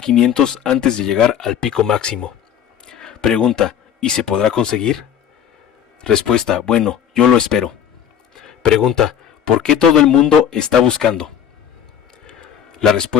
antes de llegar al pico máximo. Pregunta: ¿y se podrá conseguir? Respuesta: bueno, yo lo espero. Pregunta: ¿por qué todo el mundo está buscando? La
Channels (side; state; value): right; quieter; 9.0 dB